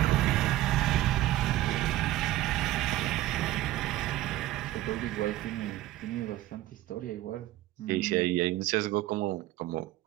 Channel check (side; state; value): left; quieter; 15.4 dB